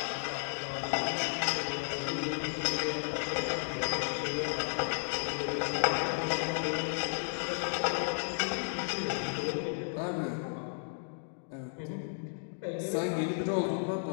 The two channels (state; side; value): silent; right; digital silence